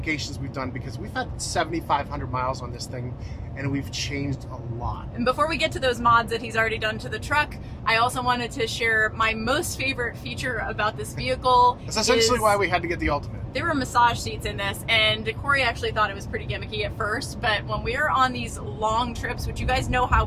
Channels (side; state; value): both; identical; correlation 1.00